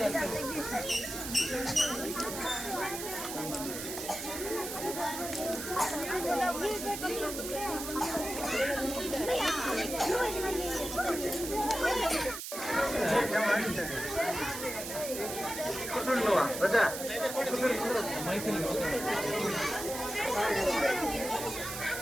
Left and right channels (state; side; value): noise; right; hiss, 7 dB below the sound